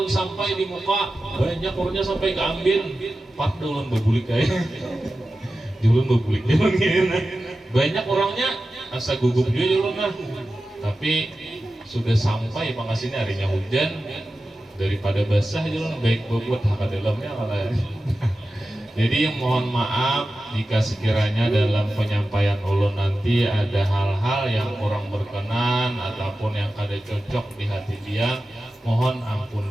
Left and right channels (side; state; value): both; normal; correlation 0.93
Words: sampai di muka banyak orangnya sampai keambil Pak ulun bebulik kayak. Ulun bebulik banyak orangnya asa gugup juga ulun lah. Tapi sudah sampai pengasihnya harinya hujan, daripada basah ulun baik bobot hak dalamnya malah. Jadi mohon maaf jika sekiranya dalam penyampaian ulun nanti ada hal-hal yang kurang berkenan ataupun yang kada cocok di hati dia, mohon ampun